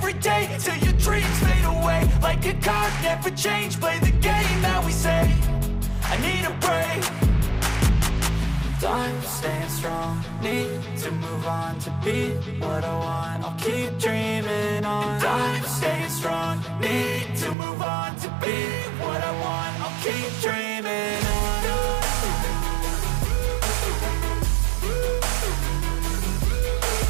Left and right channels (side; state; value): left; drops out; at 17.6 s